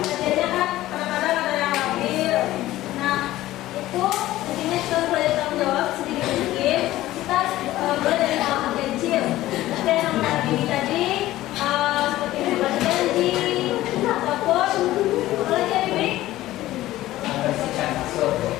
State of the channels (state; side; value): quieter; right; 15.7 dB